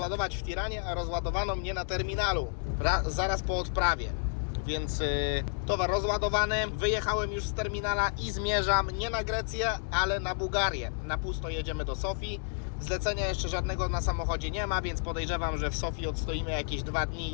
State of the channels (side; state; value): right; silent; 57 dB below the other